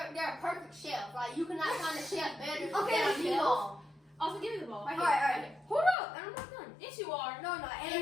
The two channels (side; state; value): right; drops out; at 6.0 s